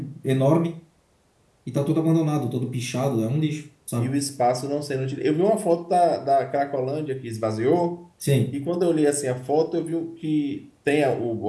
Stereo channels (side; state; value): both; identical; correlation 1.00